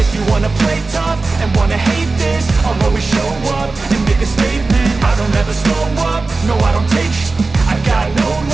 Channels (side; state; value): left; quieter; 3.7 dB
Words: If you wanna play tough and wanna hate this, I'll always show up and make a statement. I don't ever slow up, no I don't take shit. I got no